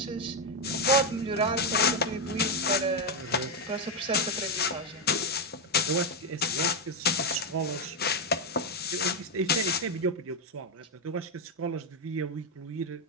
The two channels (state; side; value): normal; both; correlation 0.04